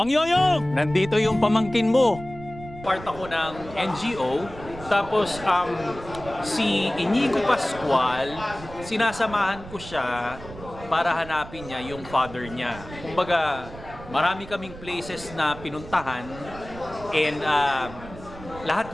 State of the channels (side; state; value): right; noise; rumble, 15 dB below the sound